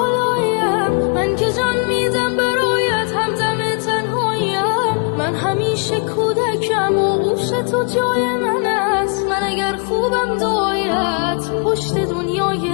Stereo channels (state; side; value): quieter; right; 38.9 dB